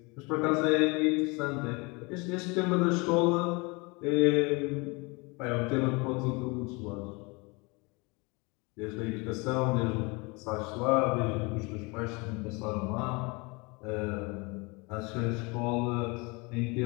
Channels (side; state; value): right; quieter; 27.8 dB